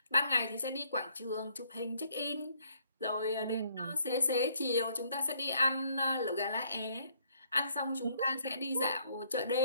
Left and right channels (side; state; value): both; inverted; correlation -0.65